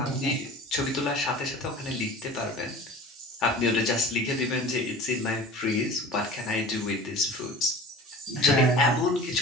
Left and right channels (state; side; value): normal; both; correlation 0.39